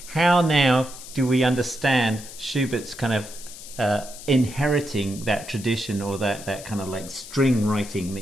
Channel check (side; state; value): left; noise; hiss, 14 dB below the sound